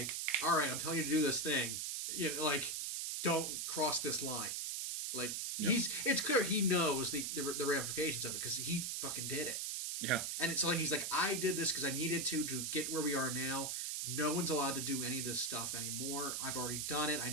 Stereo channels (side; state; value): right; noise; hiss, 2 dB below the sound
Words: all right, I'm telling you to do this thing, like don't cross this line, like it's clear he knows the ramifications of it because he fucking did it. Yeah. And it's like he's like, I did this because I needed to get where we are now. No one's allowed to do any of this stuff anymore. I've already done it. I